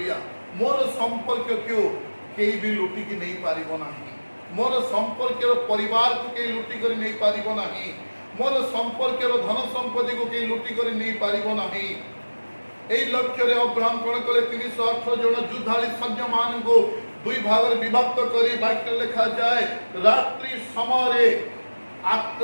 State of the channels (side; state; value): both; inverted; correlation -1.00